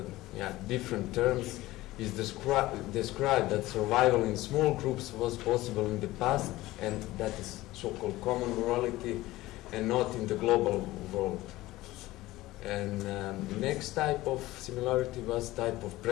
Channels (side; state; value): right; quieter; 17.6 dB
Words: different terms is described that survival in small groups was possible in the past, and that is so-called common morality, and not in the global world. And the next type of similarity was type of